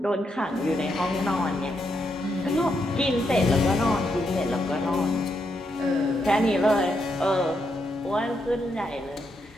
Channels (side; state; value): both; normal; correlation 0.80